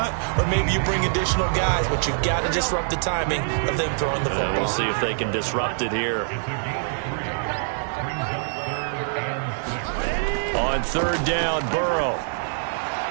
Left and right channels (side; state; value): left; silent; 62 dB below the other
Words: or maybe you bring additional guys, but you've got to disrupt the timing of them throwing the football. We'll see if they can disrupt it here. On 3rd down, Burrow.